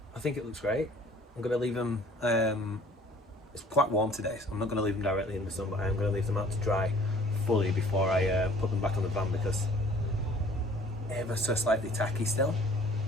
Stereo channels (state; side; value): normal; both; correlation 0.53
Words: I think it looks great. I'm going to leave them, it's quite warm today, so I'm not going to leave them directly in the sun, but I am going to leave them out to dry fully before I put them back on the van, because ever so slightly tacky still.